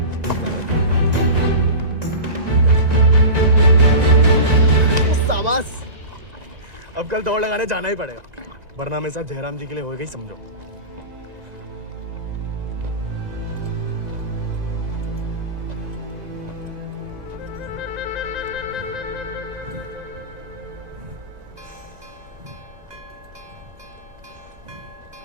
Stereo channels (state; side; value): late; left; 1.9 ms